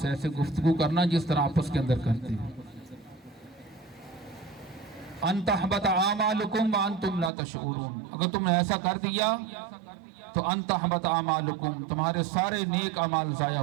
ایسے گفتگو کرنا جس طرح آپس کے اندر کرتے ہیں. ان تحبط اعمالکم وانتم لا تشعرون، اگر تم نے ایسا کر دیا تو ان تحبط اعمالکم، تمہارے سارے نیک اعمال ضائع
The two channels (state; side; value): drops out; left; at 7.3 s